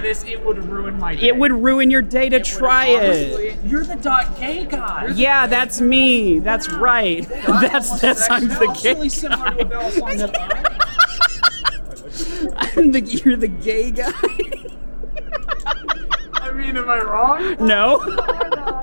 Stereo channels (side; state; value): both; inverted; correlation -1.00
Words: this. It would ruin my day. It would ruin your day to try it. You're the .gay guy. Yeah, that's me. That's right. That's I'm the gay really similar to a Balisong that You're the gay guy. I mean, am I wrong? No.